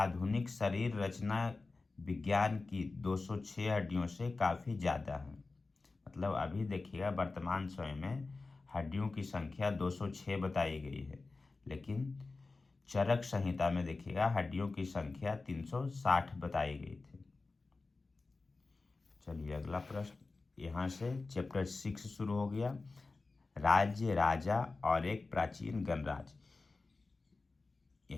शरीर रचना विज्ञान की 206 हड्डियों से काफ़ी ज़्यादा है। मतलब अभी देखिएगा वर्तमान समय में हड्डियों की संख्या 206 बताई गई है, लेकिन चरक संहिता में देखिएगा हड्डियों की संख्या 360 बताई गई थी। चलिए अगला प्रश्न, यहाँ से चैप्टर 6 शुरू हो गया, राज्य, राजा और एक प्राचीन गणराज्य।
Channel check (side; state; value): right; quieter; 3.7 dB